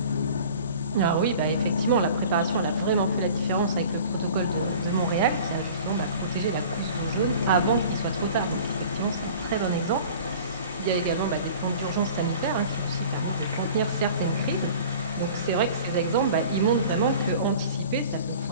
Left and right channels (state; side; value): inverted; both; correlation -0.43